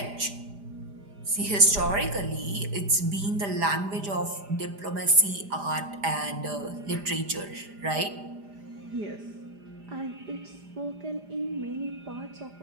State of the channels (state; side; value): late; left; 5.0 ms